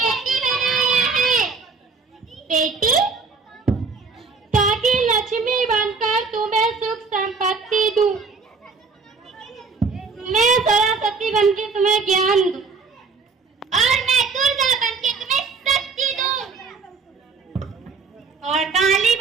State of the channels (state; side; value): quieter; left; 4.6 dB